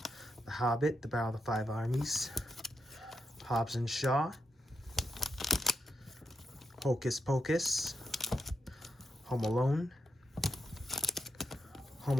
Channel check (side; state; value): both; normal; correlation 0.83